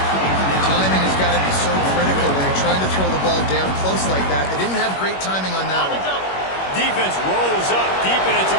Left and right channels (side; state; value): right; late; 21 ms